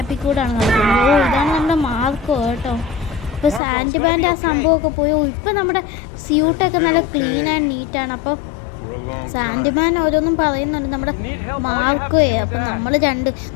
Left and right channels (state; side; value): drops out; right; at 3.6 s